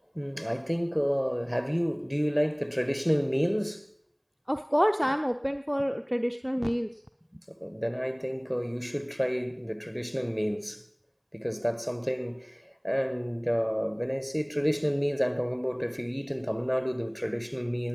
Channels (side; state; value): both; identical; correlation 1.00